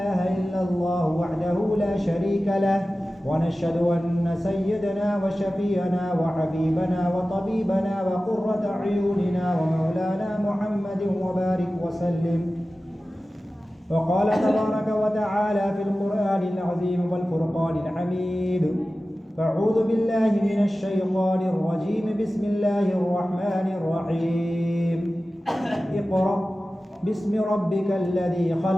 إلا الله وحده لا شريك له ونشهد أن سيدنا وشفيعنا وحبيبنا وطبيبنا وقرة أعيننا ومولانا محمد وبارك وسلم. وقال تبارك وتعالى في القرآن العظيم والفرقان الحميد: فأعوذ بالله من الشيطان الرجيم بسم الله الرحمن الرحيم. اقرأ باسم ربك الذي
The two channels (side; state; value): both; normal; correlation 0.95